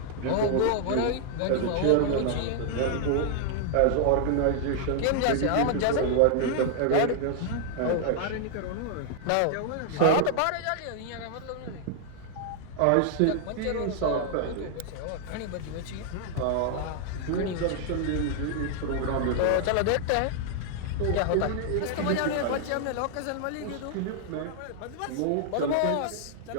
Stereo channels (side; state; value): both; different; correlation 0.00